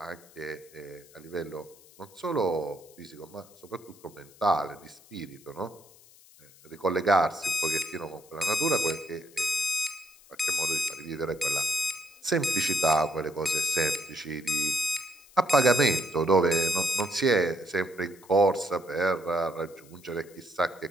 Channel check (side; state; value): left; noise; hiss, 25 dB below the sound